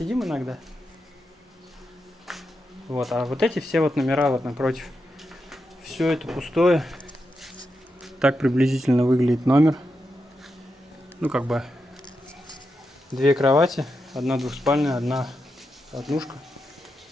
иногда. Вот, а вот эти все вот номера вот напротив. Все это пустое. Так приблизительно выглядит номер. Ну, как бы 2 кровати, одна двухспальная, одна однушка.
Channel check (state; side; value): normal; both; correlation 0.87